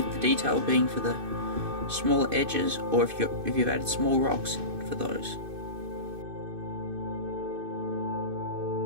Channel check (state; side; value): late; left; 2.6 ms